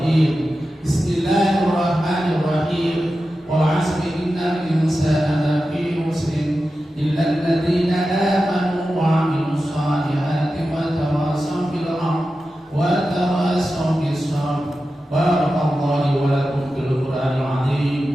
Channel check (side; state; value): both; normal; correlation 0.92